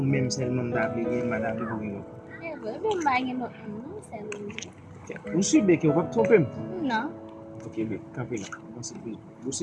seulement m'da vle gen madame le bourgeois. Vous suivez que vous va tromper? Non. Ok, mais campez là. Vous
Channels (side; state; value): both; identical; correlation 1.00